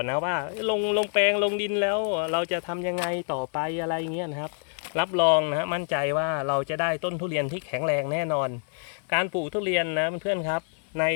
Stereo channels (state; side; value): silent; right; digital silence